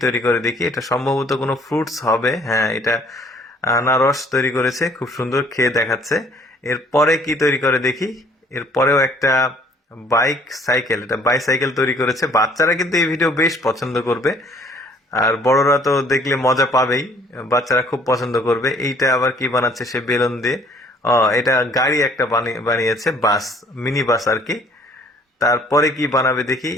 তৈরি করে দেখি। এটা সম্ভবত কোনো ফ্রুটস হবে। হ্যাঁ, এটা আনারস তৈরি করেছে, খুব সুন্দর, খেয়ে দেখাচ্ছে। এরপরে কি তৈরি করে দেখি। এরপরেও একটা বাইক সাইকেল, এটা বাইসাইকেল তৈরি করেছে। বাচ্চারা কিন্তু এই ভিডিও বেশ পছন্দ করবে, আর বড়রা তো দেখলে মজা পাবেই, বাচ্চারা খুব পছন্দ করবে। এইটা আবার কি বানাচ্ছে সে বেলুন দিয়ে। এটা গাড়ি একটা বানিয়েছে, বাস, মিনি বাস আর কি। তারপরে কি বানাবে দেখি।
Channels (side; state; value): both; normal; correlation 0.58